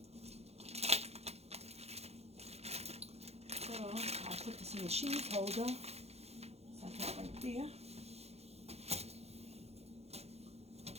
So I'll put this in the cheese holder. Set that right there.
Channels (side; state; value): left; late; 0.30 ms